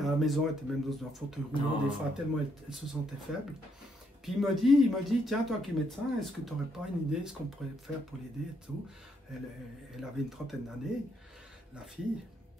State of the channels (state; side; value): normal; both; correlation 0.75